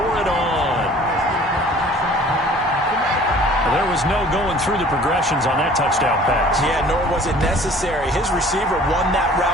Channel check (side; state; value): both; normal; correlation 0.50